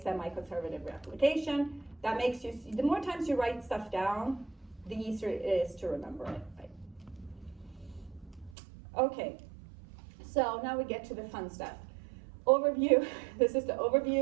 semi-conservative replication. That makes you, the more times you write stuff down, the easier it is to remember it, right? Okay, so now we get to the fun stuff. Overview, this is the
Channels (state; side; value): drops out; left; at 8.6 s